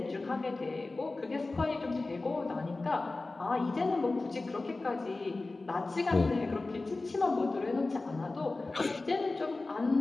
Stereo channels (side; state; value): right; quieter; 3.3 dB